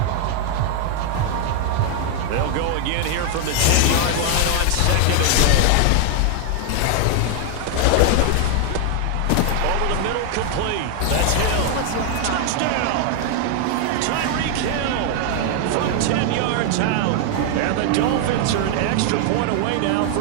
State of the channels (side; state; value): both; different; correlation 0.00